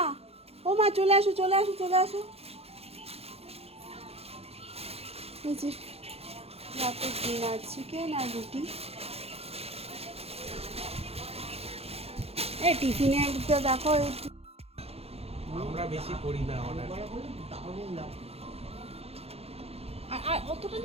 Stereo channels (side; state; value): left; late; 0.29 ms